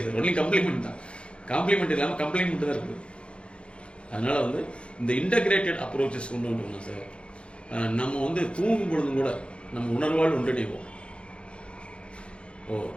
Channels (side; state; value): right; late; 0.058 ms